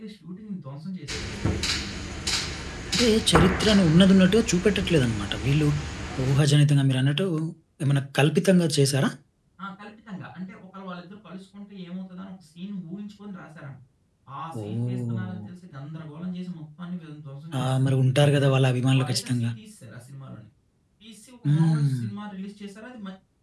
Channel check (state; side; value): identical; both; correlation 1.00